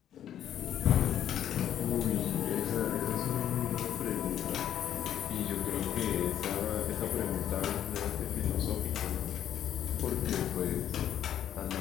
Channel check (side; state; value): right; quieter; 10.5 dB